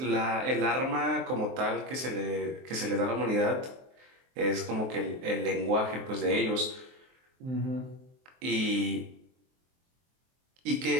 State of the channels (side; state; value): left; late; 23 ms